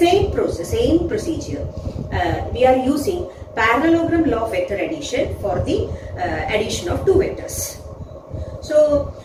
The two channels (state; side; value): identical; both; correlation 1.00